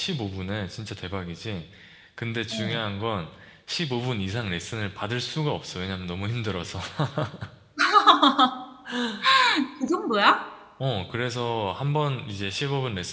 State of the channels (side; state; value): both; identical; correlation 1.00